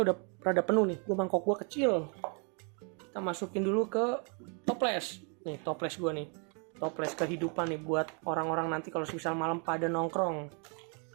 udah rada penuh nih. Mangkok gua kecil. Kita masukin dulu ke toples. Nih toples gua nih. Toples kehidupan nih buat orang-orang nanti kalau misal malam pada nongkrong.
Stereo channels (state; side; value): quieter; left; 37.9 dB